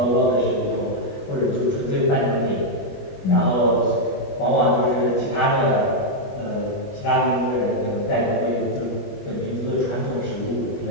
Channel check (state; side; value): late; right; 20 ms